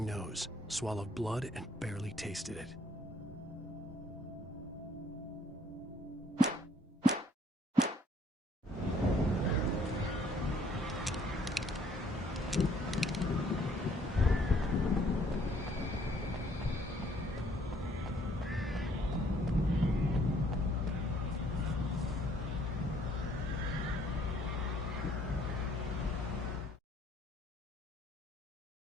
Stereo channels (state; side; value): normal; both; correlation 0.63